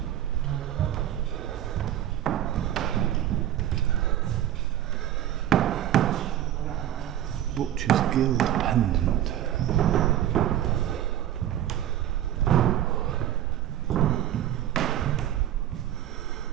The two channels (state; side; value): quieter; left; 12.0 dB